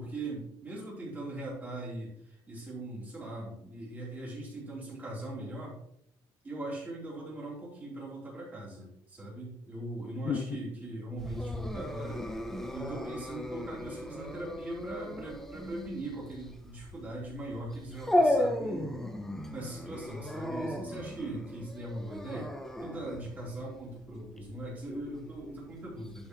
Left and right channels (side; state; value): both; normal; correlation 0.77